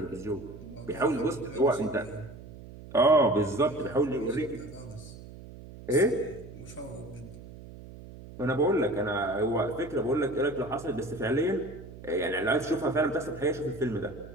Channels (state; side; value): noise; right; hum, 16 dB below the sound